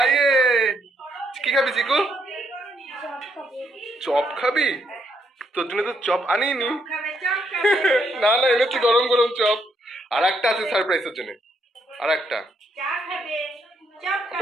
ইয়ে কি খাবি চিকু? চপ খাবি? তোর জন্য তো চপ আনিনি। না না এনেছি গরম গরম চপ, আর একটা আছে সারপ্রাইজের জন্য, আর একটা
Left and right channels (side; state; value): both; normal; correlation 0.75